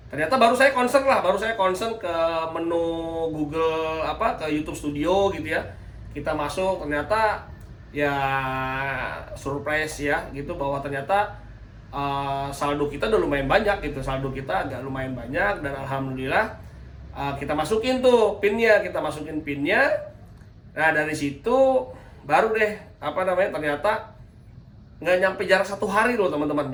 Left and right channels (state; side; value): identical; both; correlation 1.00